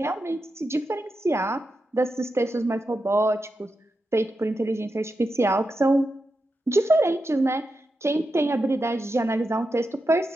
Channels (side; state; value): both; normal; correlation 0.88